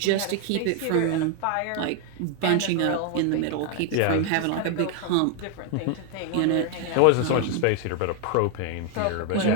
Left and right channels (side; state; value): both; different; correlation 0.00